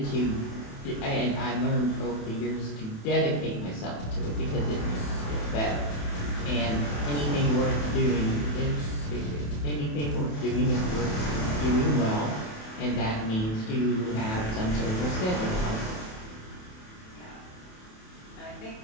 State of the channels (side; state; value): right; late; 28 ms